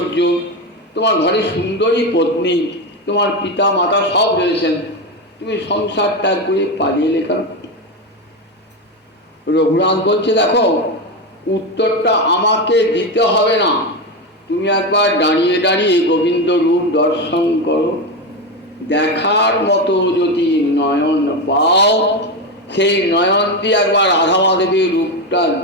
তোমার ঘরে সুন্দরী পত্নী, তোমার পিতা মাতা সব রয়েছেন, তুমি সংসার ত্যাগ করে পালিয়ে এলে কেন? রঘুনাথ বলছে দেখো, উত্তরটা আমাকে দিতে হবে না, তুমি একবার দাঁড়িয়ে দাঁড়িয়ে গোবিন্দ রূপ দর্শন করো। দেখার মতো যদি নয়ন পাও, সেই নয়ন দিয়ে একবার রাধা মাধবীর রূপটা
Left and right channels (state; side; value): normal; both; correlation 0.14